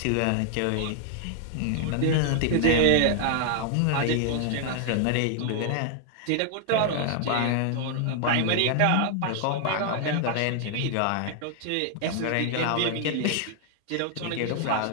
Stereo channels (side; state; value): both; different; correlation 0.00